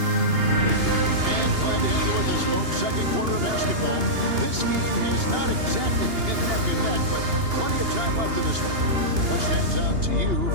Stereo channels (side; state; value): left; late; 2.8 ms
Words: glad to have you with us, folks. Second quarter of basketball. This game has not exactly been neck and neck, but plenty of time left in this one. What stands out to you